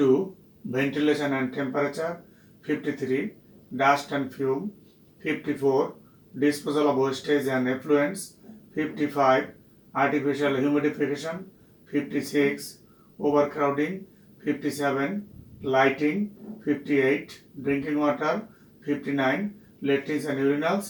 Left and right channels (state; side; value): identical; both; correlation 1.00